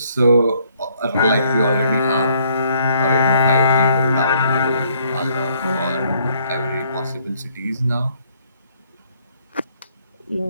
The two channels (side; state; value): both; inverted; correlation -0.66